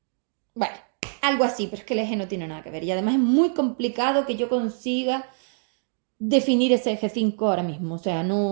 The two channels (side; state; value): left; silent; digital silence